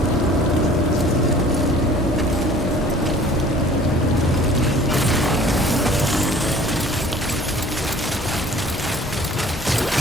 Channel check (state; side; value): normal; both; correlation 0.50